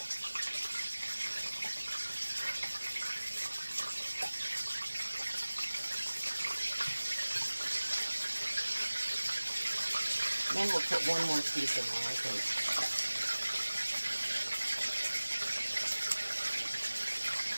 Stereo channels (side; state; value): both; inverted; correlation -1.00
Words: Then we'll put one more piece in there, I think.